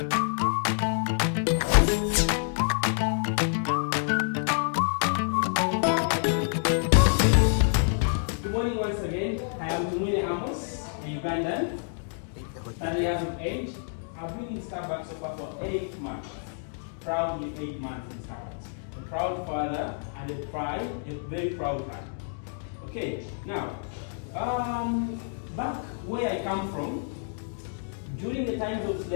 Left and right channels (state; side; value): silent; right; digital silence